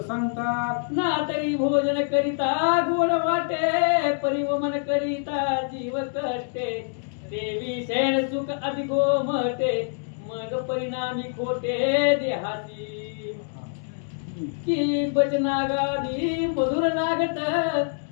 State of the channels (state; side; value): silent; right; digital silence